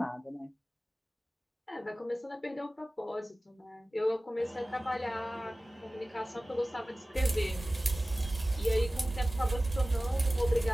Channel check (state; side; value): normal; both; correlation 0.97